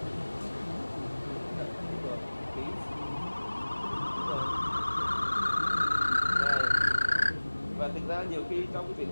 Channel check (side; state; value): both; inverted; correlation -1.00